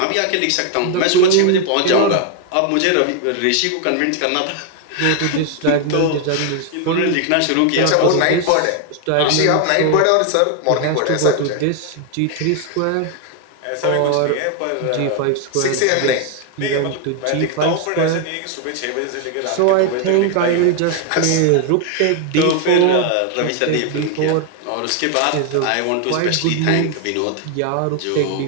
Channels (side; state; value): both; different; correlation 0.01